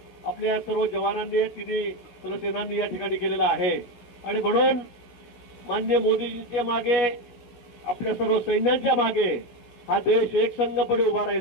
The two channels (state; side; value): late; right; 17 ms